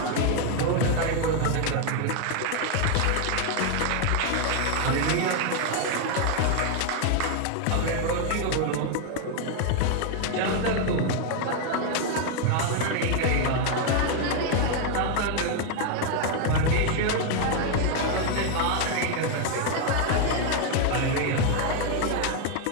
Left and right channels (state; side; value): different; both; correlation 0.00